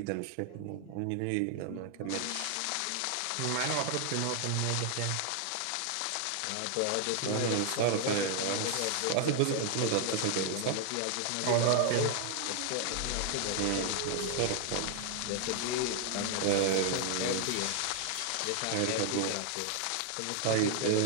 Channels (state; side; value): different; both; correlation 0.00